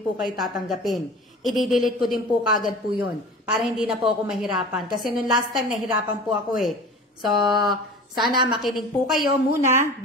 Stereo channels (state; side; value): normal; both; correlation 0.38